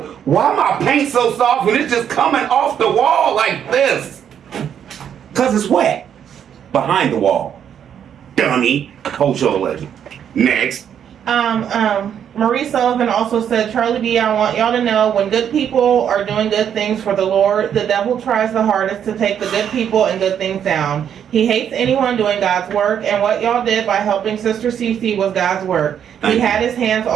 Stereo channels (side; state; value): left; quieter; 8.8 dB